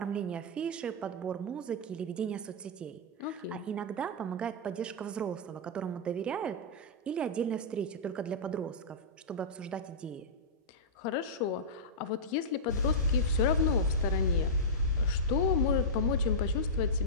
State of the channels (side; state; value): both; normal; correlation -0.13